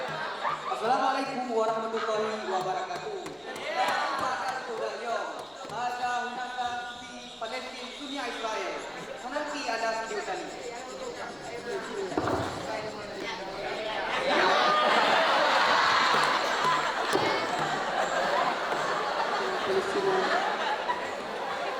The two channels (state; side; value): identical; both; correlation 1.00